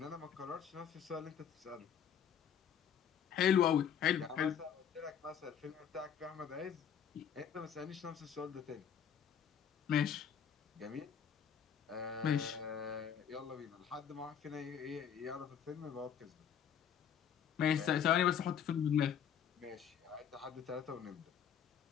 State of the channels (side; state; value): right; quieter; 8.3 dB